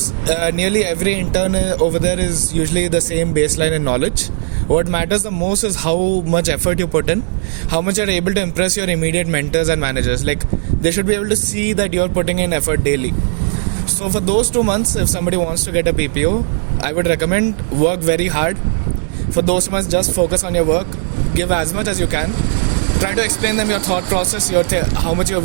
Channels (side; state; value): left; silent; 64 dB below the other